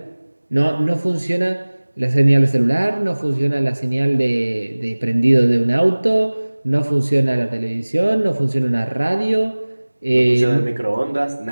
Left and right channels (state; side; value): inverted; both; correlation -1.00